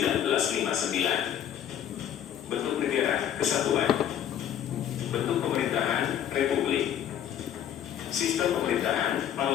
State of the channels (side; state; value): right; quieter; 10.0 dB